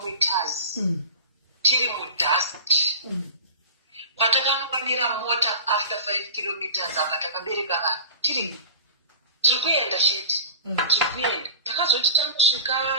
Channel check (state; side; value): inverted; both; correlation -0.33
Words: tiri mudust patakanomira mota after 5 kilometers apa takabereka vanhu tiri kuenda chete tiri kuenda takazoti tanosvika